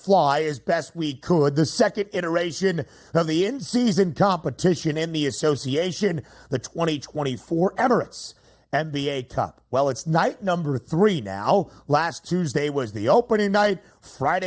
as best we could the second iteration of the in-season competition in the association, the 2024 Emirates NBA Cup. Well, it's night number 3 now. Last Tuesday was the opening night.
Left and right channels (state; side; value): identical; both; correlation 1.00